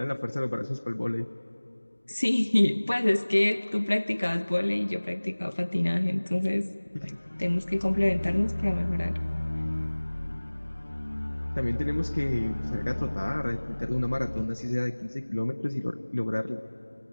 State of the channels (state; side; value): inverted; both; correlation -1.00